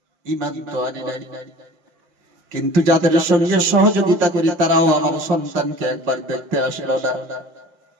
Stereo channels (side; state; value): left; late; 5.4 ms